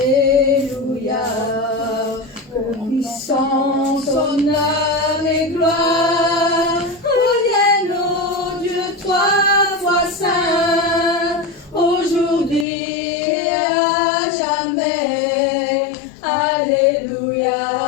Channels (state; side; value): drops out; right; at 12.7 s